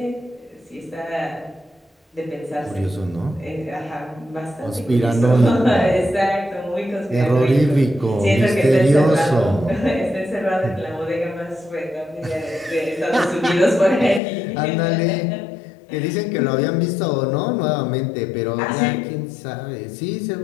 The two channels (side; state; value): right; drops out; at 14.2 s